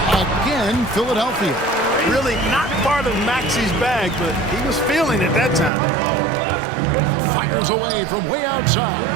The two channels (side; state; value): left; drops out; at 5.7 s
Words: Again, Philadelphia. Really not part of Maxey's bag, but he was feeling it that time. Fires away from way outside.